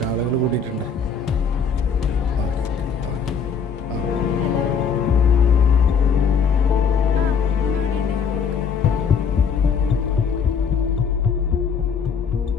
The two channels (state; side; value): quieter; right; 6.1 dB